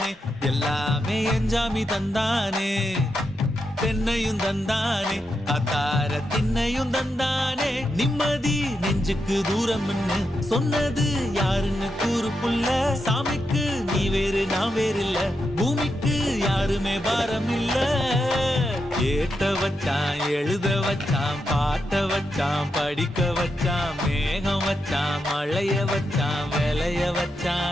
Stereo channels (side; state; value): both; normal; correlation 0.85